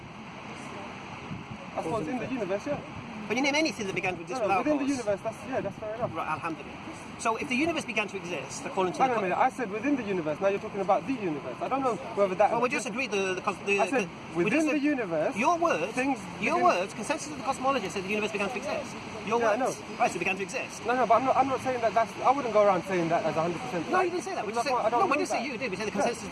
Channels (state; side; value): identical; both; correlation 1.00